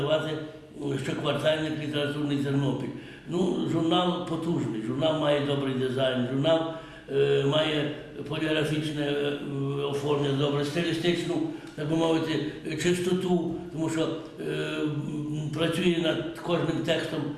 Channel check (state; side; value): identical; both; correlation 1.00